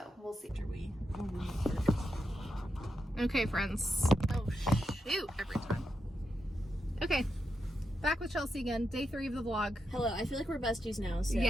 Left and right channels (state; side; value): normal; both; correlation 0.85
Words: we'll see. Okay, friends. Oh shoot! Every time. Okay, back with Chelsea again. Day 3 of the vlog. Hello, I feel like we're besties now. So